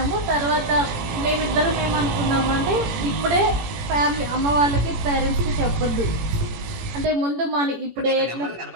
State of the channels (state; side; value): late; left; 18 ms